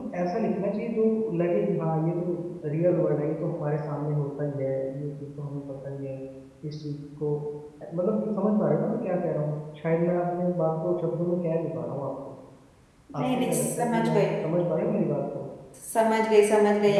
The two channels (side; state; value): both; identical; correlation 1.00